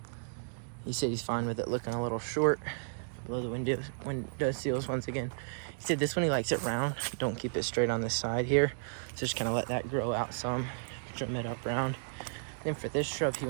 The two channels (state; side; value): silent; left; digital silence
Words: he said he's fine with it looking a little short below the window sills once again. He said this one he likes it round. Don't keep it straight on this side here. So just kind of let that grow out some. Trim it up round. Then for this shrub, he